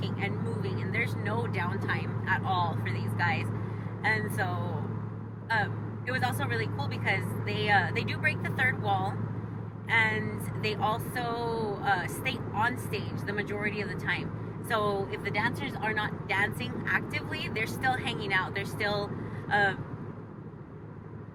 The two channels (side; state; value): both; identical; correlation 1.00